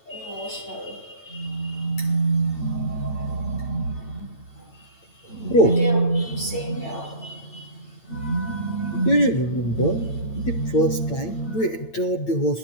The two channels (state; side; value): late; right; 8.8 ms